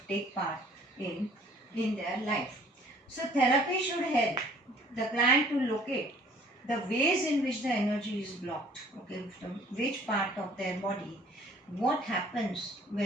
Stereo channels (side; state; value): both; normal; correlation 0.55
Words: take part in their life. So therapy should help the client to locate the ways in which the energy is blocked, okay, from which part of their body, what happens